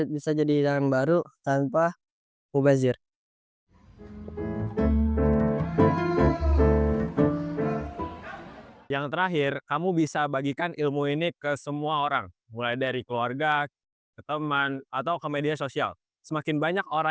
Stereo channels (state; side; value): identical; both; correlation 1.00